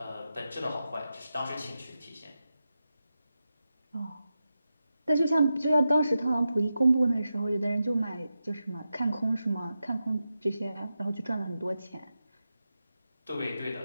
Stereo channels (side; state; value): both; inverted; correlation -0.90